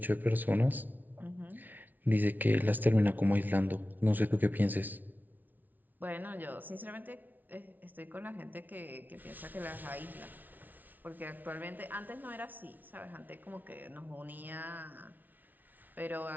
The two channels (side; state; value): left; late; 0.082 ms